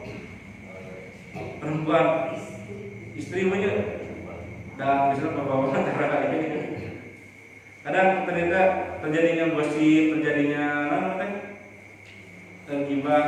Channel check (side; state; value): both; identical; correlation 1.00